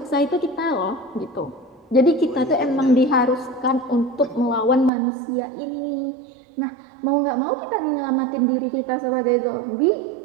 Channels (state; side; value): drops out; left; at 4.9 s